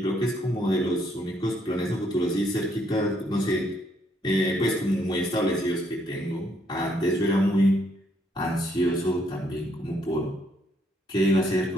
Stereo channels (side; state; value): both; normal; correlation 0.71